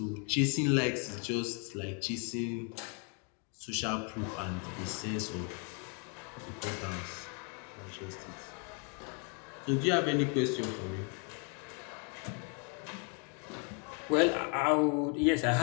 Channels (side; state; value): right; quieter; 38.2 dB